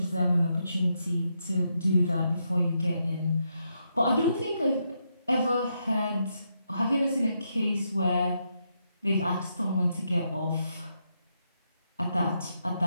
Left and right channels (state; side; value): inverted; both; correlation -0.81